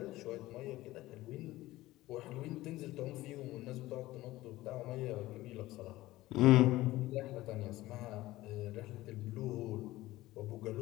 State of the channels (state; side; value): quieter; right; 17.3 dB